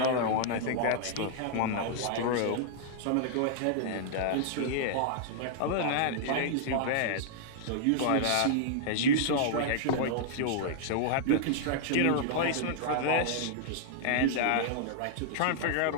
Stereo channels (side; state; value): both; different; correlation -0.01